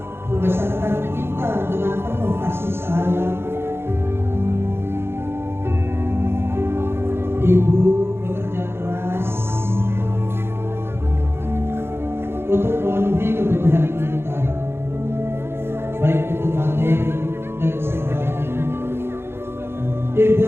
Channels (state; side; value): late; left; 0.11 ms